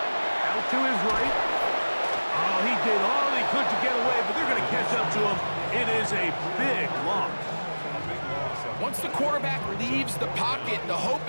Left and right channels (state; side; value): inverted; both; correlation -1.00